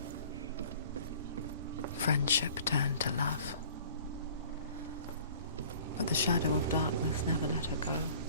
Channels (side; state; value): both; inverted; correlation -0.49